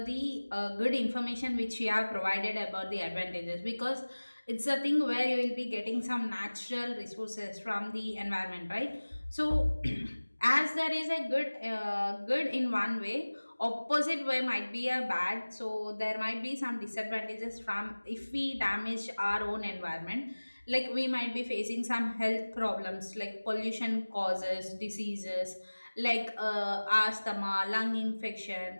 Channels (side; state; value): both; inverted; correlation -1.00